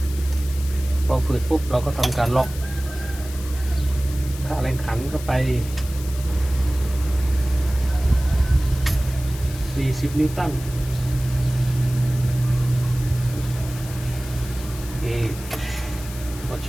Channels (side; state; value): left; noise; hiss, 15 dB below the sound